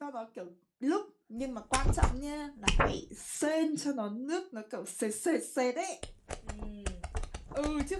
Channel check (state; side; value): identical; both; correlation 1.00